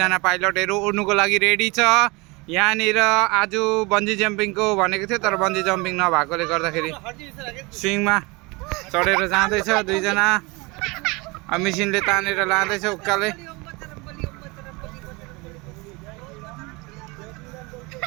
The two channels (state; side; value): quieter; left; 26.0 dB